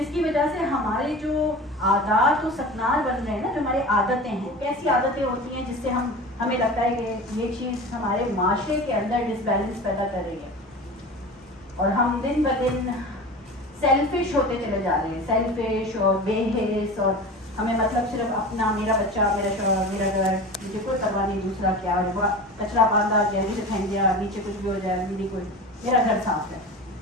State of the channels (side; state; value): both; normal; correlation 0.33